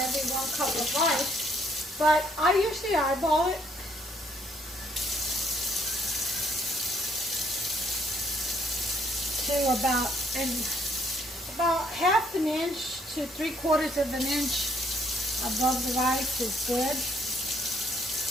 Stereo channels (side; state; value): both; normal; correlation 0.67